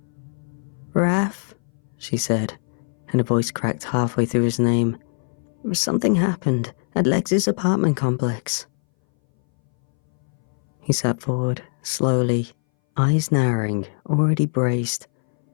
"Raf," she said, and a voice cracked halfway through his name. "Something happened at Lex's apartment complex." He sat forward, slowly, eyes narrowing, already braced.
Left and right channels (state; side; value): silent; right; 61 dB below the other